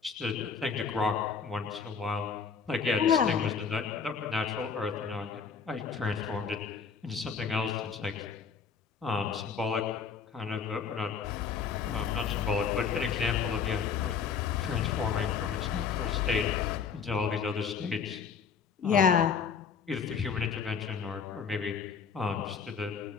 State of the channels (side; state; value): right; quieter; 6.2 dB